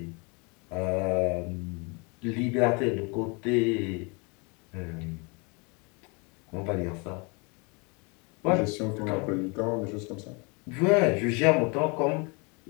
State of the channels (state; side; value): quieter; right; 31.0 dB